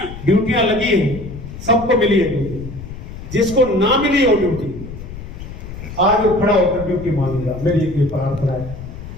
ड्यूटियां लगी है, सबको मिली है ड्यूटी, जिसको ना मिली है वो ड्यूटी आज खड़ा होकर ड्यूटी मांगेगा, मेरी एक प्रार्थना है।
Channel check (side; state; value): left; noise; rumble, 12 dB below the sound